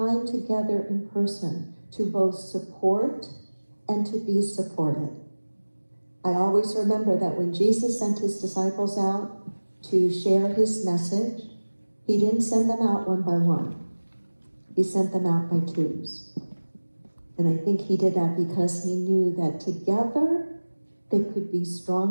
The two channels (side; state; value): both; inverted; correlation -1.00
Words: together in person to both support and to be supported. I always remember that when Jesus sent his disciples out to share his message, he didn't send them out one by one. He sent them out by twos. And I think he did that because he knew that together they could be